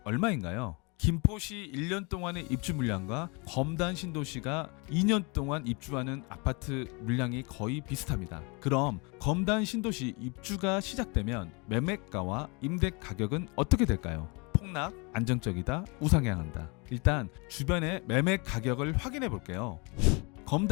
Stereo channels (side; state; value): right; quieter; 30.4 dB